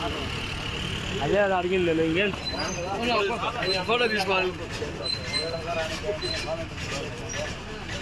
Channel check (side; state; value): both; identical; correlation 1.00